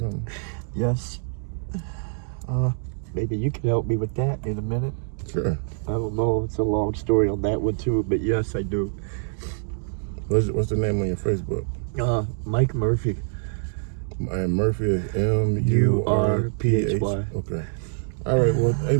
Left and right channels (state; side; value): silent; left; digital silence